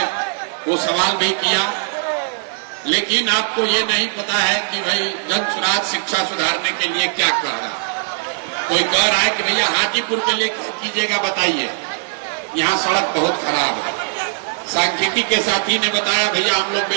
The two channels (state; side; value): silent; left; 66 dB below the other